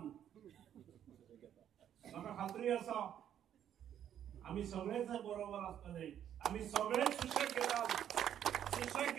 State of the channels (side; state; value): left; quieter; 10.0 dB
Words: म्हाका खात्री आसा आमी सगळेच बरोबर आसतले. आमी सगळेच सुशेग घेतात. सुशेग